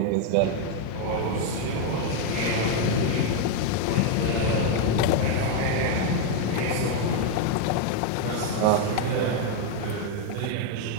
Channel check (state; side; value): different; both; correlation 0.01